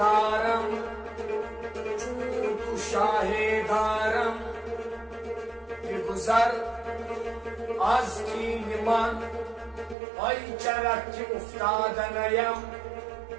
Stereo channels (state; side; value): drops out; left; at 10.0 s